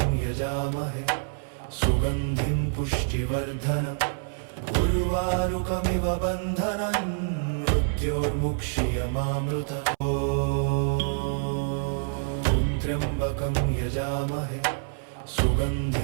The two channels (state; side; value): silent; left; 60 dB below the other